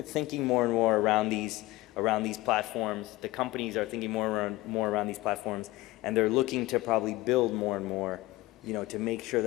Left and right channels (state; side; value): quieter; right; 18.8 dB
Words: around these platforms. The companies are thinking more around these platforms, and they're looking to probably build more and more, to make sure